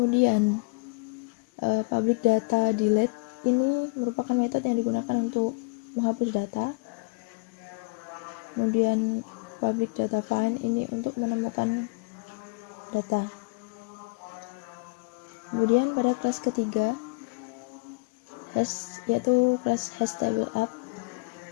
public data delete ini merupakan metode yang digunakan untuk menghapus data. Kemudian public data find ini untuk menemukan data. Kemudian pada kelas ketiga yaitu kelas hash table up,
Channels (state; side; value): quieter; right; 30.7 dB